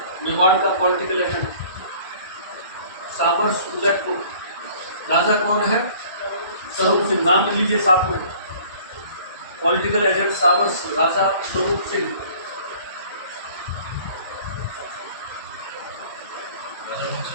मेवाड़ का पॉलिटिकल एजेंट साबर्स उदयपुर। राजा कौन है? स्वरूप सिंह। नाम लिख लीजिए साथ में। पॉलिटिकल एजेंट साबर्स, राजा Swaroop Singh.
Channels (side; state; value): both; inverted; correlation -0.51